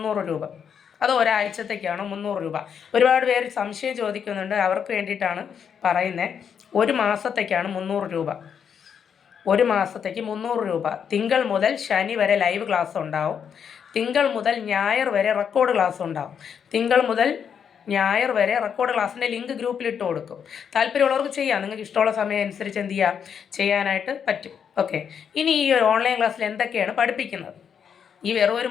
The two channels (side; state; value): right; quieter; 7.5 dB